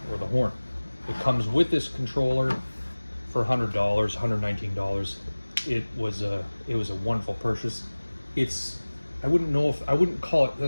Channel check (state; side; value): inverted; both; correlation -1.00